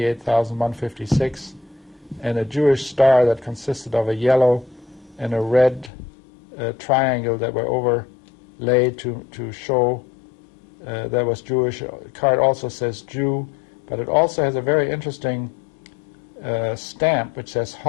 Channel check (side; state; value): right; drops out; at 5.9 s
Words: and a Jewish star that consisted of a yellow and a red triangle that were overlaid to show that was Jewish. The card also says Jew, but it also has a very interesting stamp which says